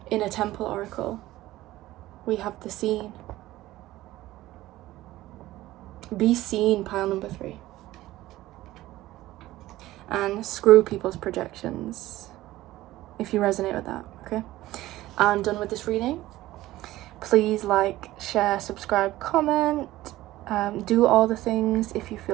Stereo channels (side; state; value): left; quieter; 16.3 dB